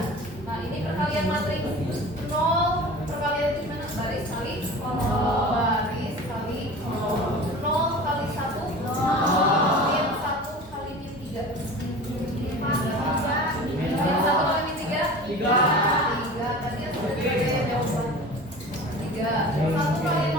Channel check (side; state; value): both; normal; correlation 0.37